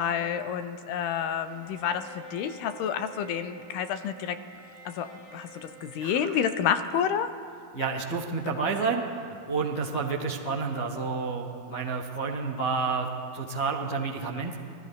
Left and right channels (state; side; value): late; right; 14 ms